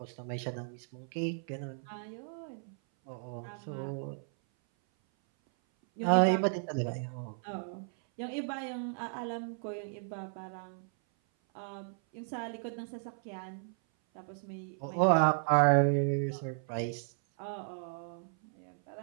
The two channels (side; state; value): left; silent; 55 dB below the other